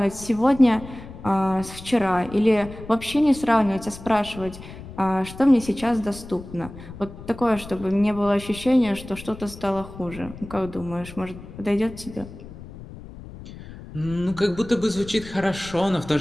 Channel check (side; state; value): left; noise; rumble, 15 dB below the sound